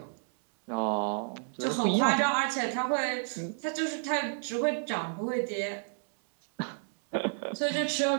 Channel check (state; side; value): silent; left; 57 dB below the other